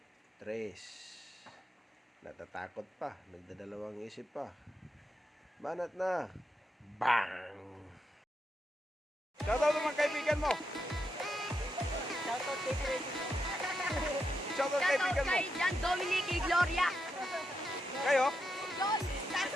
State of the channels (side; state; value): both; normal; correlation 0.84